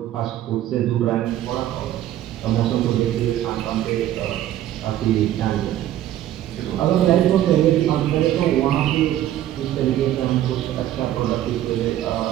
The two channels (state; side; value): quieter; left; 12.6 dB